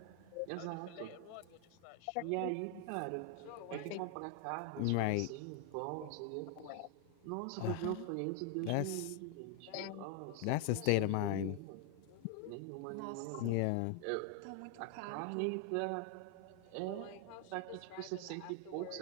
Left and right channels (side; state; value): both; different; correlation 0.00